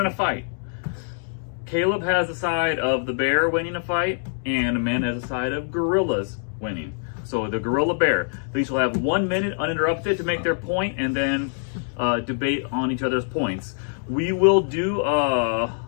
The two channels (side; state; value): right; silent; digital silence